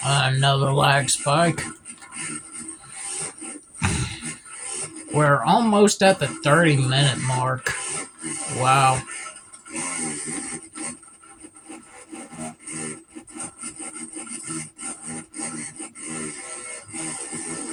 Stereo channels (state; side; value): identical; both; correlation 1.00